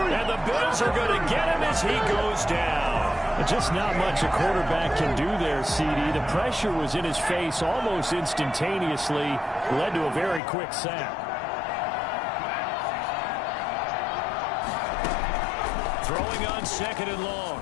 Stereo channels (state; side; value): drops out; right; at 10.4 s